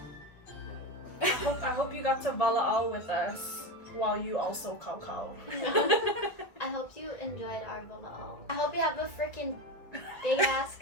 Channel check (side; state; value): right; late; 1.6 ms